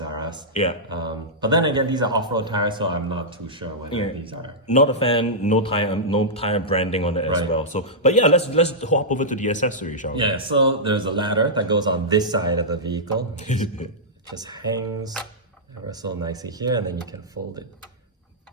R Us. Yeah. But then again, these are off-road tires, so I'm not too sure whether these are. Not a fan. No tire branding on it as well. So, but let's hop over to the accessory, shall we? Yeah. So there's a ladder that goes on this side of the vehicle. Just hangs ever so nicely here, and then you can fold it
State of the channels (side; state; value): both; normal; correlation -0.11